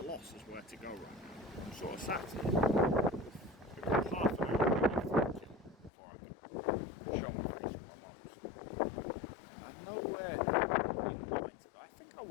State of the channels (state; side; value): drops out; right; at 5.9 s